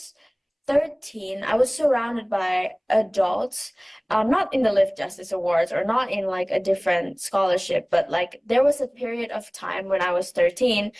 13, I was surrounded by adults, not in the Live Justice Awards or not in like a different scholarship, but like there was a period of time when I was 13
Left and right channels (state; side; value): identical; both; correlation 1.00